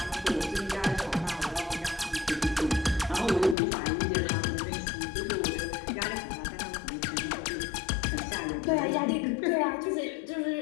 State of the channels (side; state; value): right; drops out; at 3.6 s